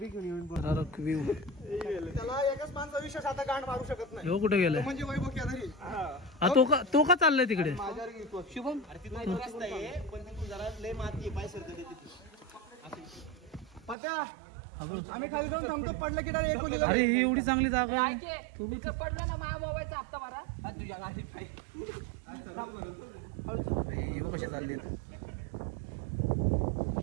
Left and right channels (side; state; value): left; drops out; at 14.0 s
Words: घेऊन व्ह्यू त्याला एकच माणसा विशेष आता गांड मारू शकत नाही. हो कुठे गेलाय म्हणजे वैभव केदारी तो का चाललाय तिकडे. शुभम अरे तिथं रस्ता आहे पण तिथून जरा लय माती आहे, पाय सरकते तिथे. पत्या आम्ही खाली जाऊन थांबतो, पडलं की डायरेक्ट एकोलीला. अरे ही एवढी चांगली जागा आहे. तिथं पडलं ना माझ्या मोबाईलचा हप्ता भरा तुझ्या गाडीत कशा चालले